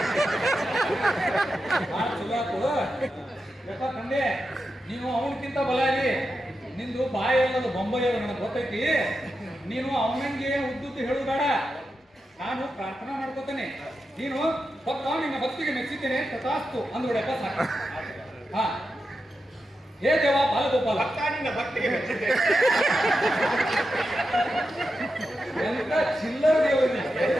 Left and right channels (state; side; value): normal; both; correlation 0.89